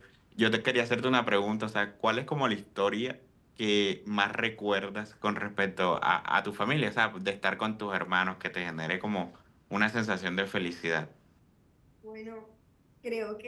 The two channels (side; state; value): both; identical; correlation 1.00